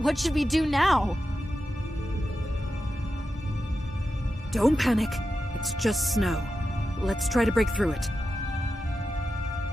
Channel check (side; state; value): both; normal; correlation 0.90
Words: What should we do now? Don't panic. It's just snow. Let's try to break through it.